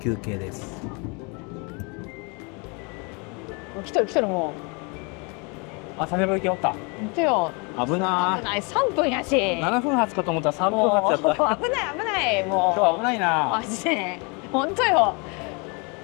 憩です。来てる来てる、もあ、佐世保行きおった。う見てよ。危な危ない、3分やし。ー。7分発かと思ったら3分もう発やった。危ない危ない、もう今日危ないな。マジで本当よ。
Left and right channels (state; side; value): quieter; right; 31.7 dB